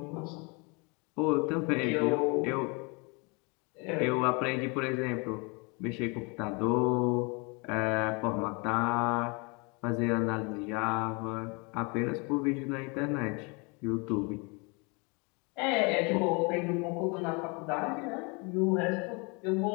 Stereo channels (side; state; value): right; quieter; 30.7 dB